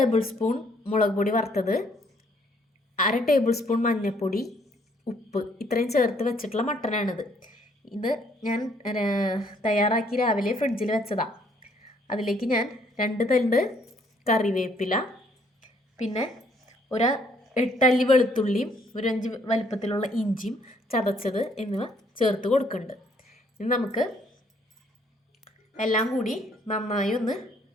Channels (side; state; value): both; normal; correlation 0.66